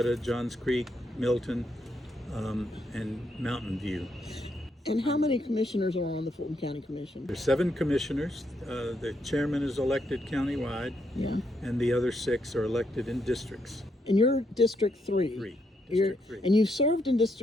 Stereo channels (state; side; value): normal; both; correlation 0.78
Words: Johns Creek, Milton, and Mountain View. And how many commissioners are on the Fulton County Commission? There's 7 commissioners. The chairman is elected countywide, Yeah. and the other 6 are elected in districts. And you're District 3. District 3. And you've served in